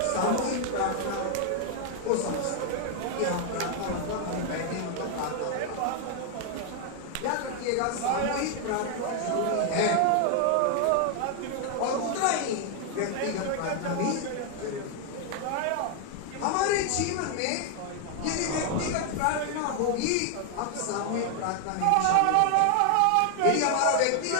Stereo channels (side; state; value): both; different; correlation 0.00